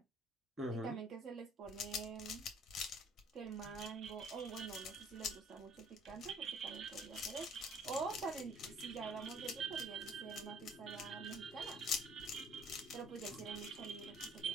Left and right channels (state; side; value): normal; both; correlation 0.57